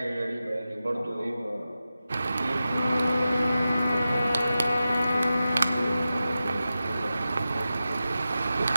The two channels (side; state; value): both; inverted; correlation -0.92